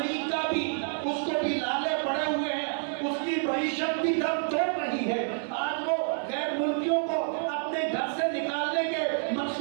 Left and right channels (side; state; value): left; silent; digital silence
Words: بھی اس کو بھی لالے پڑے ہوئے ہیں، اس کی معیشت بھی دم توڑ رہی ہے۔ آج وہ غیر ملکیوں کو اپنے گھر سے نکالنے کے